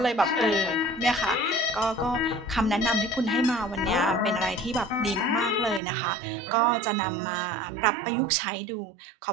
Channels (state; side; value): drops out; left; at 5.8 s